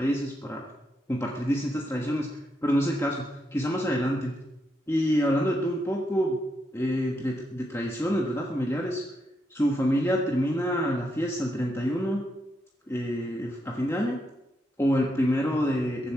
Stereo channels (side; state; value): both; normal; correlation 0.81